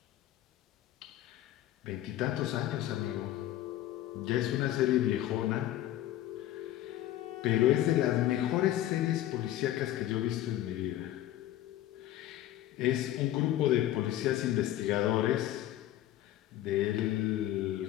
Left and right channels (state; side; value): quieter; right; 13.6 dB